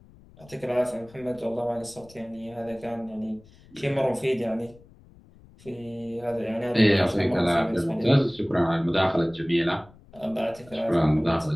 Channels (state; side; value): noise; left; rumble, 25 dB below the sound